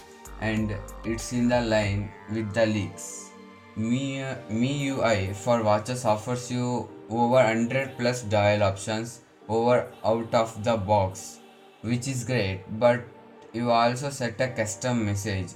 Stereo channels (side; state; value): both; identical; correlation 1.00